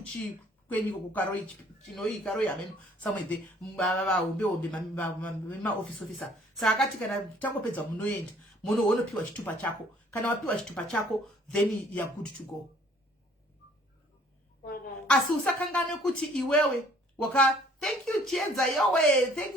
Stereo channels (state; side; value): normal; both; correlation 0.58